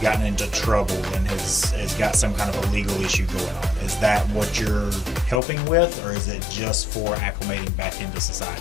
into trouble and has got some kind of a legal issue going on. Is that what you're helping with, or is it just for acclimating back into society?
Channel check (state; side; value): drops out; right; at 5.4 s